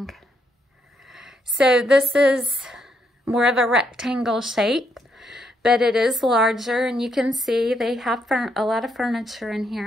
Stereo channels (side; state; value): both; normal; correlation 0.76